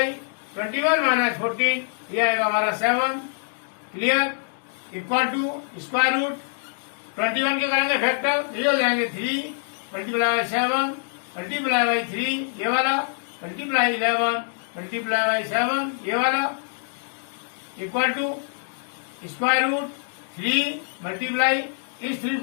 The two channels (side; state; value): right; silent; 61 dB below the other